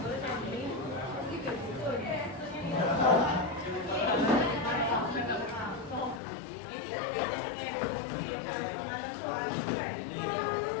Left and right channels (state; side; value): drops out; right; at 6.2 s